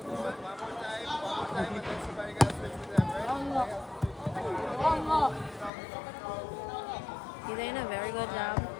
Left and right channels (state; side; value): drops out; right; at 5.7 s